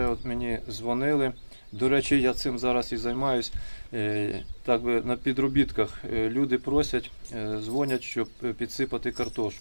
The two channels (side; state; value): both; inverted; correlation -1.00